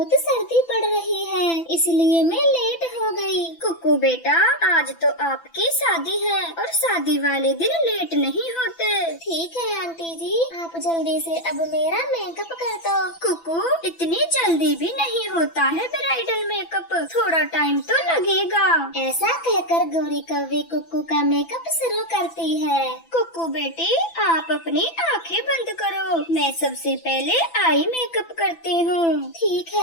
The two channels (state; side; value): late; right; 6.0 ms